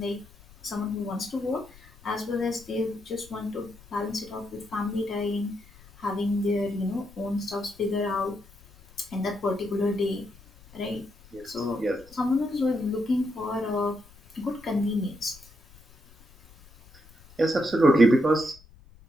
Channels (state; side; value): noise; left; rumble, 24 dB below the sound